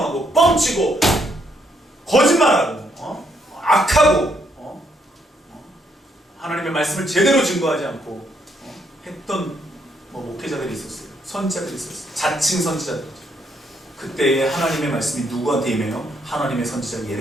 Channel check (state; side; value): normal; both; correlation 0.73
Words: 뻥치고 거짓말하고 악하고 하나님의 말씀을 제대로 증거하지 않고 했던 목회자들이 있었어요. 선지자들이 있었어요. 자칭 선지자들. 그때의 하나님의 말씀이 누구한테 임해요? 하나님의 선지자